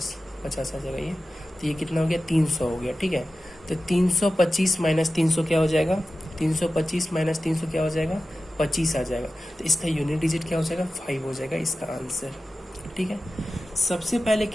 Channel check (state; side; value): normal; both; correlation 0.94